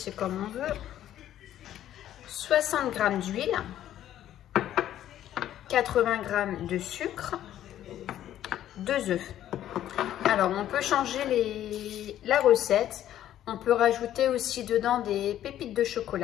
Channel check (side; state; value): right; quieter; 11.9 dB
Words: comme on veut, 60 g d'huile, 80 g de sucre, 2 œufs. Alors on peut changer la recette, on peut rajouter aussi dedans des pépites de